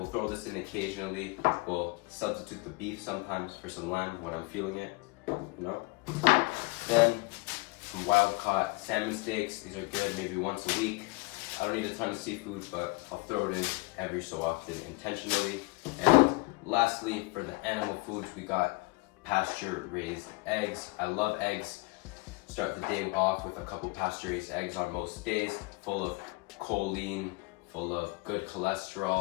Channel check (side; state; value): right; quieter; 26.0 dB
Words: throw this in occasionally. We'll substitute the beef sometimes for some lamb when I'm feeling it, Then some wild caught salmon steaks. These are good, maybe once a week. I don't need a ton of seafood, but I'll throw it in every so often intentionally. And lastly, for the animal foods, we got pasture raised eggs. I love eggs. Start the day off with a couple pasture raised eggs on most days, full of choline, full of good